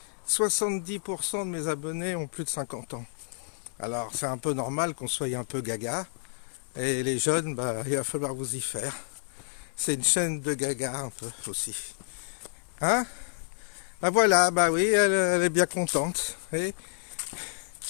70% de mes abonnés ont plus de 50 ans. Alors c'est un peu normal qu'on soit un peu gaga. Et les jeunes, bah, il va falloir vous y faire. C'est une chaîne de gaga un peu aussi. Hein? Bah voilà, bah oui, elle est bien contente. Et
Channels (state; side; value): silent; right; 58 dB below the other